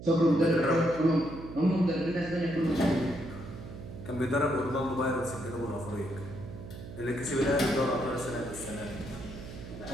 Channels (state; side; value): noise; right; hum, 12 dB below the sound